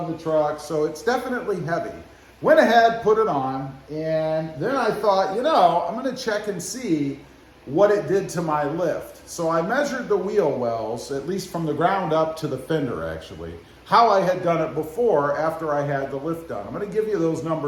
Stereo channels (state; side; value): identical; both; correlation 1.00